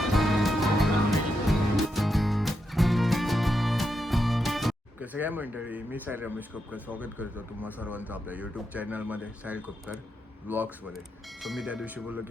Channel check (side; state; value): both; normal; correlation 0.84